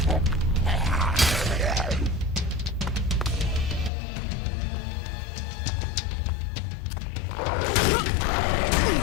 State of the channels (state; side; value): drops out; right; at 3.9 s